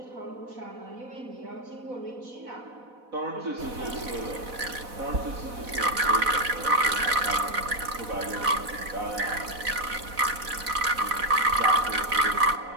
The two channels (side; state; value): left; late; 4.1 ms